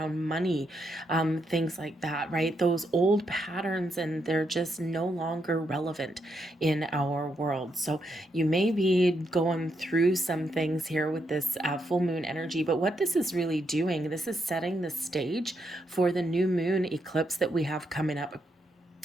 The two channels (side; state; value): both; normal; correlation 0.80